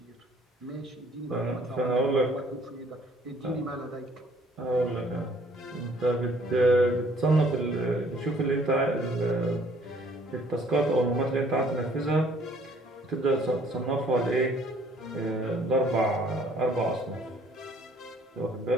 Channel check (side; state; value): both; normal; correlation 0.60